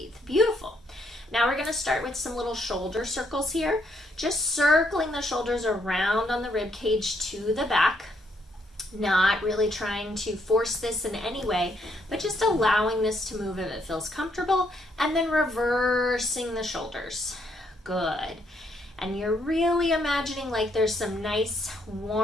Beautiful. Now we're going to start with some little shoulder circles here. Just circling the shoulders around on the rib cage to the back. Not really trying to force this in any way, but just allowing this to move if it feels comfortable. And then reversing the shoulders. Good. And you're really imagining like there's some nice,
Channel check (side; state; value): both; normal; correlation 0.73